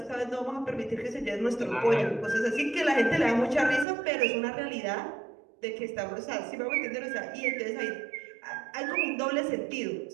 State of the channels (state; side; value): drops out; left; at 3.9 s